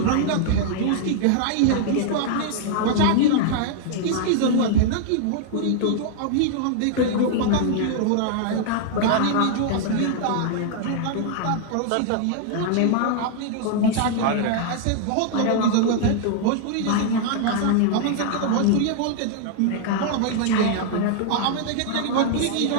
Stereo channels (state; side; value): different; both; correlation -0.01